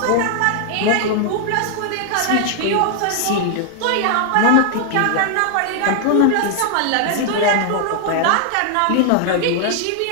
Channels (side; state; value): both; different; correlation 0.00